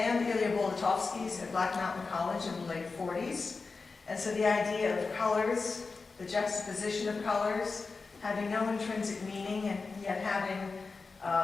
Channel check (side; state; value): right; quieter; 4.3 dB